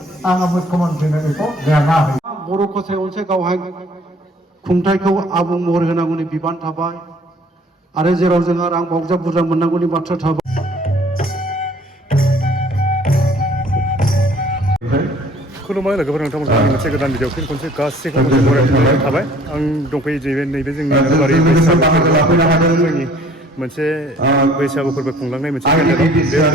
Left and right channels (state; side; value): normal; both; correlation 0.55